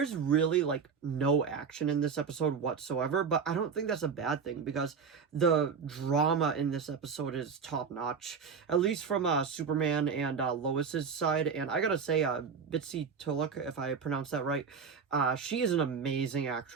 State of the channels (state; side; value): quieter; left; 6.1 dB